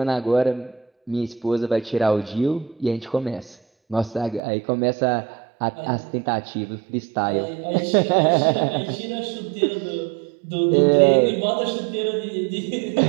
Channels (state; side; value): drops out; left; at 4.4 s